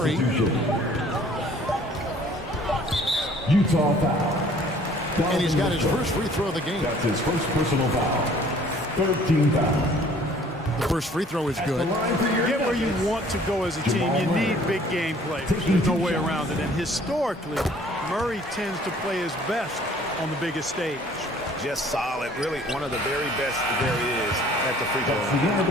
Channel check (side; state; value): both; normal; correlation 0.55